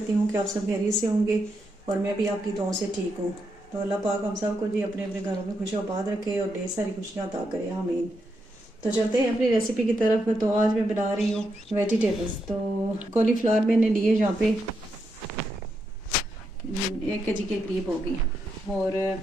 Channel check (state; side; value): normal; both; correlation 0.82